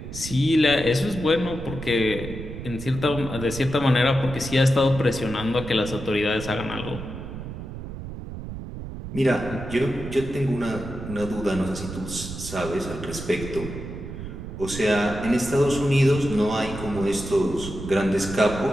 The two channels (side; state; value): right; noise; rumble, 9 dB below the sound